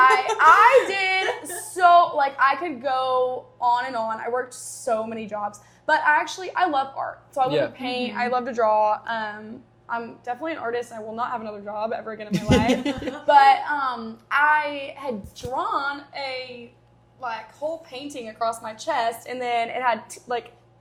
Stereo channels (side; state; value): both; identical; correlation 1.00